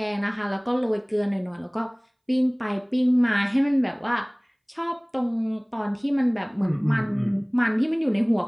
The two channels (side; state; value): both; identical; correlation 1.00